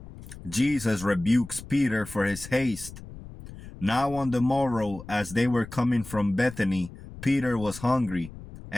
Jesus rebukes Peter for his haste. Now on the morrow, as they were coming from Bethany, Peter was hungry,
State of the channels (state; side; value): noise; left; rumble, 15 dB below the sound